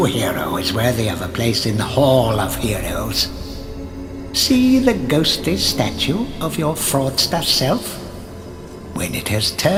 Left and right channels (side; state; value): both; identical; correlation 1.00